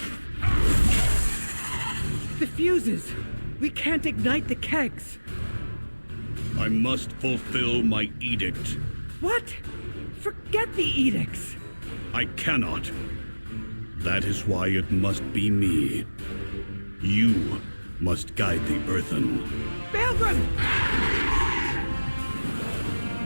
The fuses! We can't ignite the kegs! I must fulfill my edict. What? Forget the edicts! I cannot. That is why it must be me. You must guide the Earthen. Baelgrim!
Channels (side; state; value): both; inverted; correlation -1.00